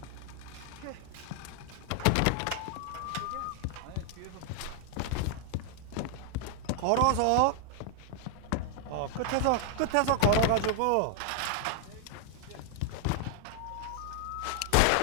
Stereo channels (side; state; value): both; different; correlation 0.00